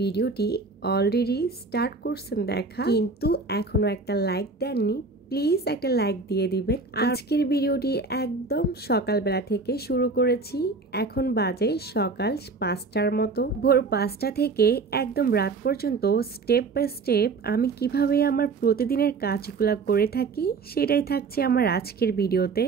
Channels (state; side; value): quieter; left; 4.1 dB